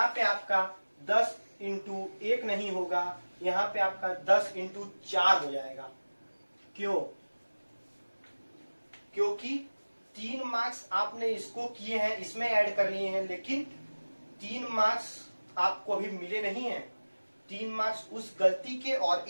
पे आपका 10 इंटू 1 नहीं होगा, यहाँ पे आपका 10 इंटू 4 हो जाएगा। क्यों? क्योंकि 3 मार्क्स आपने इसको किए हैं, इसमें ऐड कर लिए हैं, लेकिन 3 मार्क्स आपको अभी मिले नहीं है। 3 मार्क्स उस गलती के और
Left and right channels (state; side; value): inverted; both; correlation -1.00